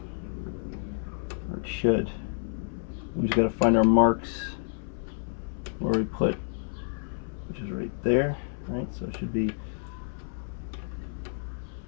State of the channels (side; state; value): right; silent; 58 dB below the other